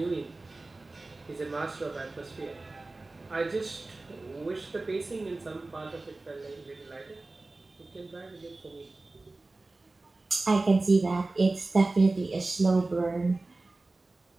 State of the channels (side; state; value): left; quieter; 3.2 dB